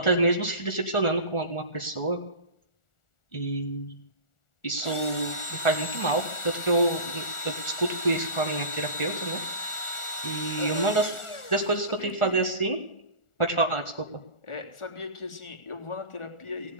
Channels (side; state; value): right; late; 1.4 ms